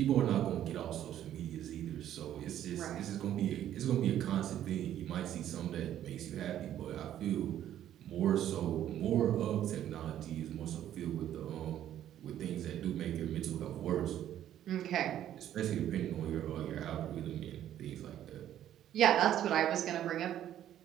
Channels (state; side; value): quieter; left; 11.4 dB